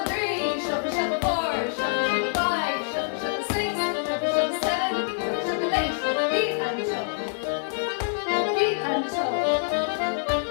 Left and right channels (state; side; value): silent; right; digital silence